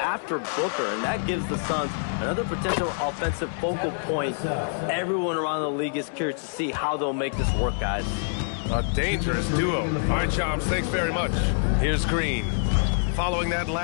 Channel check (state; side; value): silent; right; digital silence